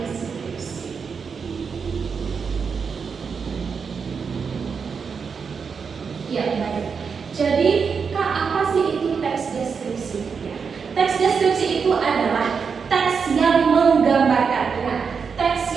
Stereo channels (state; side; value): quieter; left; 5.8 dB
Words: Ya, baik. Jadi, Kak, apa sih itu teks deskripsi? Ya. Teks deskripsi itu adalah teks yang menggambarkan, teks